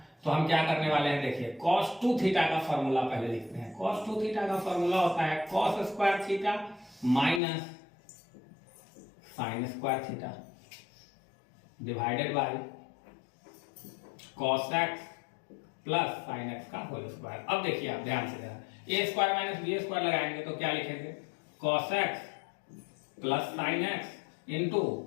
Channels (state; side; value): drops out; right; at 7.4 s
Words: तो हम क्या करने वाले हैं, देखिए cos 2 थीटा का फॉर्मूला पहले लिखते हैं। cos 2 थीटा का फॉर्मूला होता है cos square theta minus sin square theta divided by cos x plus sin x का होल स्क्वायर। अब देखिए आप ध्यान से जरा, a square minus b square लगाएंगे तो क्या लिखेंगे, cos x plus sin x into